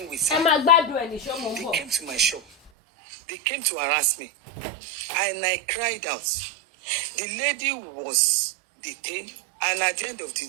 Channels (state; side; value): drops out; left; at 2.7 s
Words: with her. They came to my shop. They came to harass me. And I cried out. The lady was detained, and at the end of the